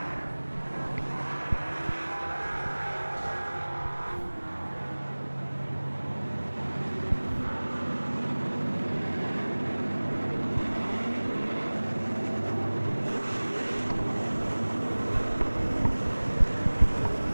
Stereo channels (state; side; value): inverted; both; correlation -1.00